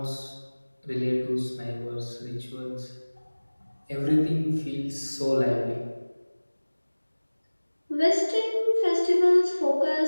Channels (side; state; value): both; inverted; correlation -1.00